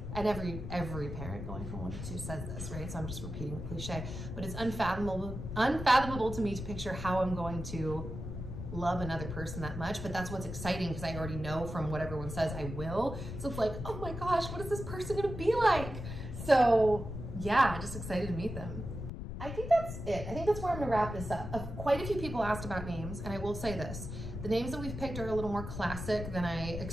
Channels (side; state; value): left; noise; rumble, 7 dB below the sound